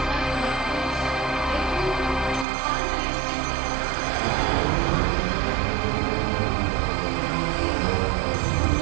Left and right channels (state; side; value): drops out; left; at 2.5 s